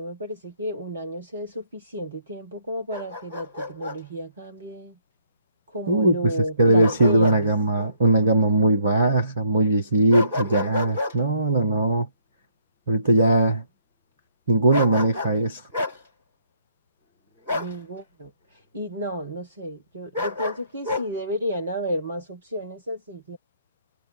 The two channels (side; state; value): both; inverted; correlation -0.68